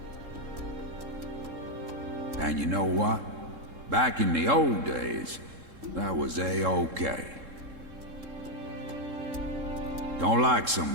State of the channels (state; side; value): late; left; 3.7 ms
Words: And you know what? Back in the old days, that was A-okay. Don't like